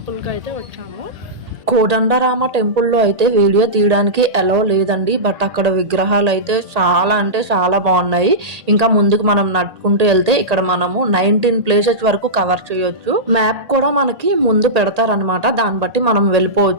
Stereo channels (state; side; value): late; left; 1.8 ms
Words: అయితే వచ్చాము. కోదండరామ టెంపుల్లో అయితే వీడియో తీయడానికి అలౌ లేదండి, బట్ అక్కడ విగ్రహాలు అయితే చాలా అంటే చాలా బాగున్నాయి. ఇంకా ముందుకు మనం నడుచుకుంటూ వెళ్తే ఇక్కడ మనము 19 ప్లేసెస్ వరకు కవర్ చేయొచ్చు. మ్యాప్ కూడా మనకి ముందు పెడతారనమాట, దాన్ని బట్టి మనం